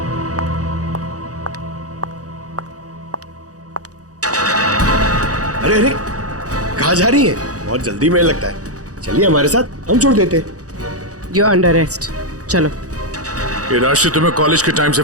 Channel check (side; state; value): left; late; 0.67 ms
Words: अरे अरे, कहाँ जा रही है? बहुत जल्दी में लगता है। चलिए हमारे साथ, हम छोड़ देते। You're under arrest. चलो। ये राशि तुम्हें कॉलेज के टाइम से